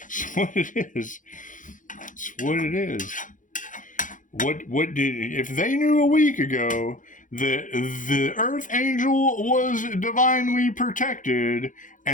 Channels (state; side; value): late; right; 0.38 ms